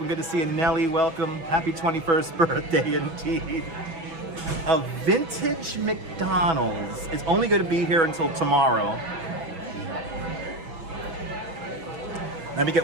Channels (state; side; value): late; left; 6.1 ms